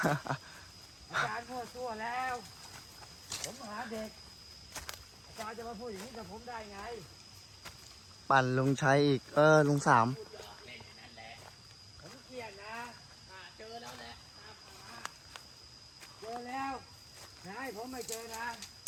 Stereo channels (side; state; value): both; identical; correlation 1.00